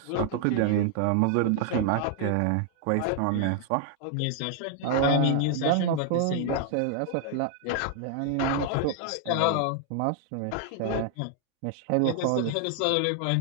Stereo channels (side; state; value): both; different; correlation 0.00